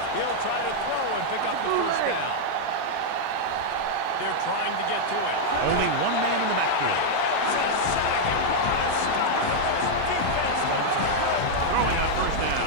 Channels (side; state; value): both; different; correlation -0.01